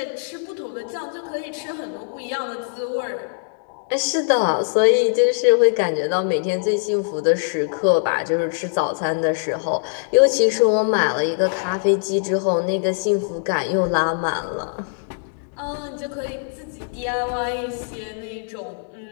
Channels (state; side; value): silent; right; 64 dB below the other